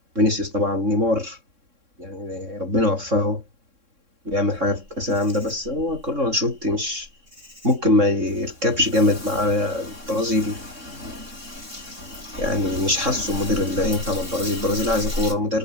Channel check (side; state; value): left; late; 3.6 ms